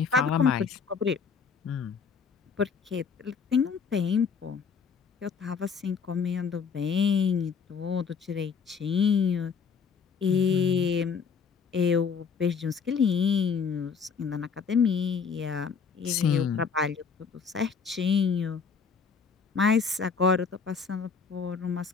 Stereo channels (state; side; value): quieter; right; 5.9 dB